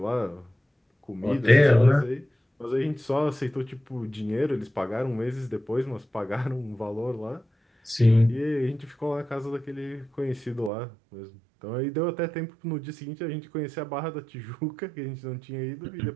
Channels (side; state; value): left; drops out; at 10.7 s